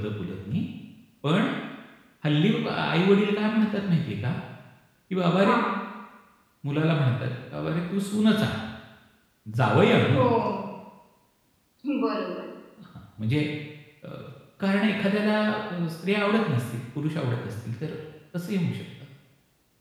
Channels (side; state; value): both; identical; correlation 1.00